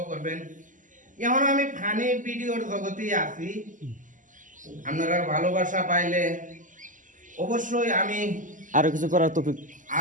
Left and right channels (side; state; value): left; late; 0.38 ms